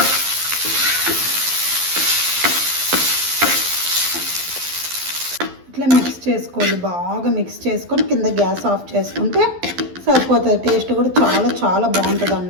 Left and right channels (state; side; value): late; left; 12 ms